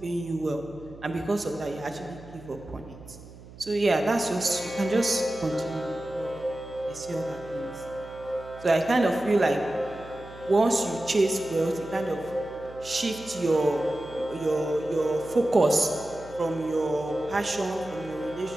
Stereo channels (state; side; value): noise; right; hum, 18 dB below the sound